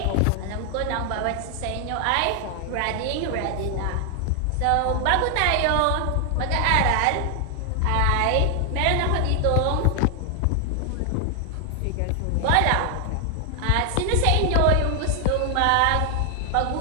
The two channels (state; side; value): different; both; correlation 0.00